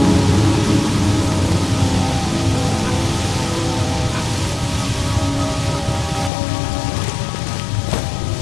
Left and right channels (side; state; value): right; drops out; at 6.3 s